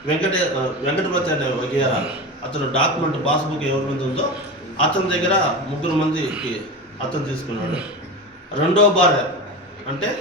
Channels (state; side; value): normal; both; correlation 0.25